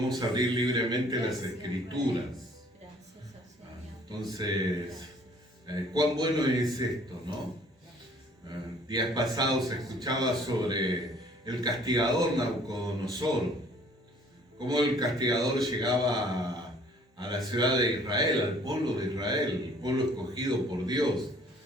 abrir libremente las Escrituras. Entonces, cuán bueno es esto, ¿no? Días pasados se escuchaba sobre el castigador Nabucodonosor, cómo el castigador llegaba a la ciudad de Israel, al pueblo de Israel, el pueblo escogido por Dios.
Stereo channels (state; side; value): normal; both; correlation 0.56